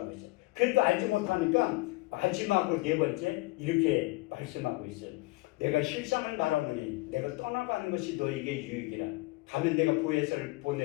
있어요. 그래도 알지 못하니까 마지막으로 네 번째 이렇게 말씀하고 있어요. 내가 실상을 말하노니 내가 떠나가는 것이 너에게 유익이라. 가면 내가 보혜사를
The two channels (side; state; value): right; quieter; 22.3 dB